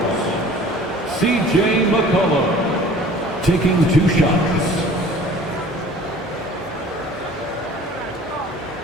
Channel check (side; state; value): both; normal; correlation 0.47